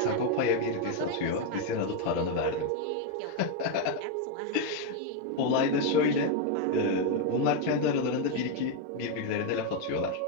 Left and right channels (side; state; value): both; different; correlation 0.01